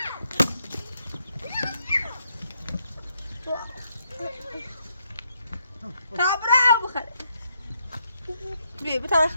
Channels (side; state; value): both; inverted; correlation -0.77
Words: تابع ابو خالد بي بتاع